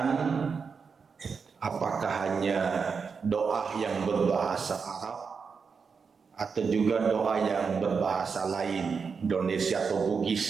apakah hanya doa yang berbahasa Arab atau juga doa yang berbahasa lain, Indonesia atau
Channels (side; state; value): left; quieter; 5.6 dB